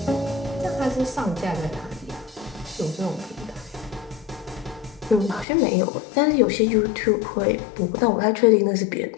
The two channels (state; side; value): drops out; right; at 5.5 s